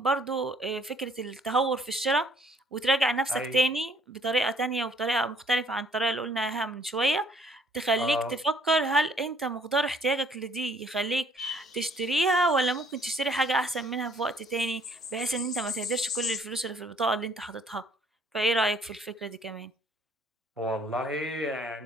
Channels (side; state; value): both; normal; correlation 0.62